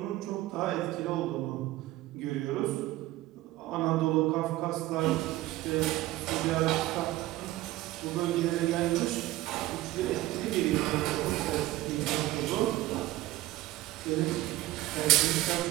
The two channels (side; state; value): left; quieter; 16.9 dB